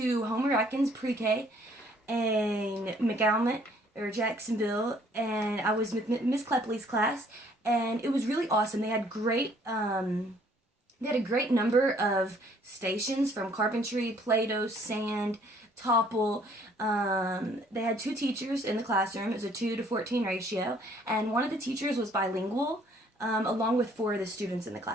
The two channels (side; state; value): both; normal; correlation 0.61